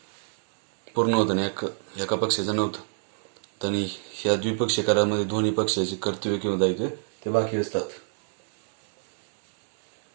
पूर्ण होतं आणि एका पक्षाचं नव्हतं. आणि ह्या द्विपक्षीय करारामध्ये दोन्ही पक्षाचे कर्तव्य किंवा दायित्व ते बाकी असतात.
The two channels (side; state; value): left; silent; 60 dB below the other